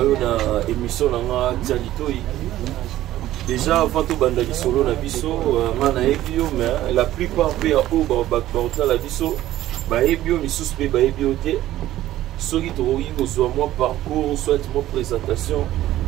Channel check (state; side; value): quieter; left; 14.2 dB